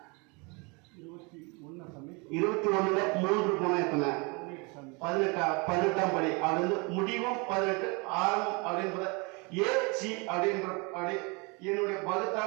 21 3 போனா எத்தனை? 18ஆம் படி. அப்படி முடிவும் 18 ஆரம்பம் அப்படின்றத ஏசி அப்படின்ற அப்படி என்னுடைய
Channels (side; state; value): left; quieter; 29.9 dB